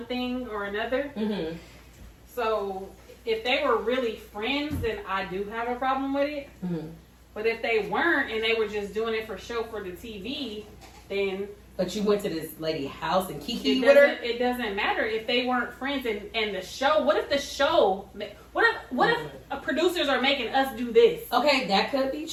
thing or another. So if they were really friends, then I do have a problem with it. But if they weren't and they were just doing it for show for the TV, then... But you went to this lady's house and kiki with her? It doesn't matter if they weren't friends and the show... What if the show... What if producers are making us do this? Okay, that could be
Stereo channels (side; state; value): both; identical; correlation 1.00